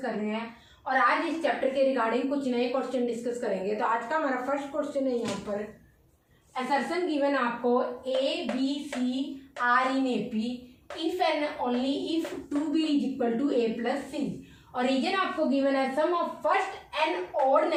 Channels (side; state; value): both; identical; correlation 1.00